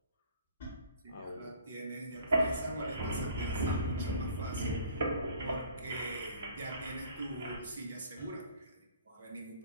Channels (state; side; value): inverted; both; correlation -0.53